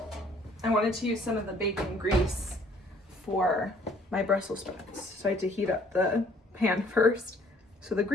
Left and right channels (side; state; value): both; normal; correlation 0.60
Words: I wanted to use some of the bacon grease for my Brussels sprouts, so I had to heat up the pan first so the